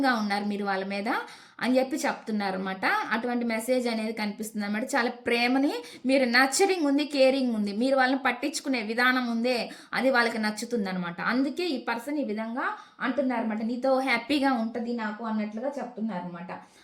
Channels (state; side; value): identical; both; correlation 1.00